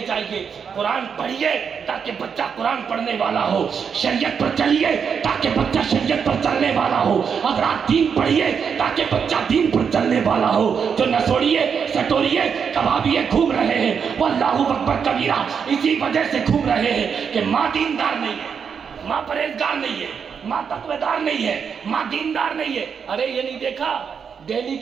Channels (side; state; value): left; quieter; 6.7 dB